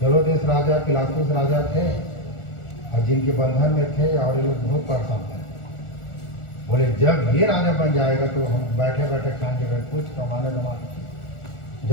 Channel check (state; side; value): late; right; 1.4 ms